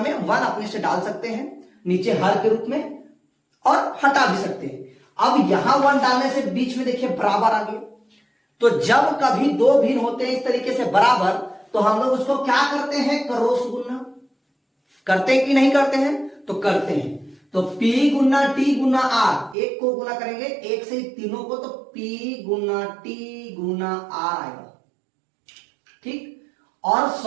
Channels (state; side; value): drops out; left; at 19.6 s